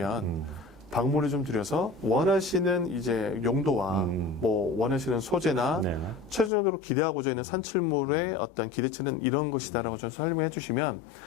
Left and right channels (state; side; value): drops out; right; at 6.5 s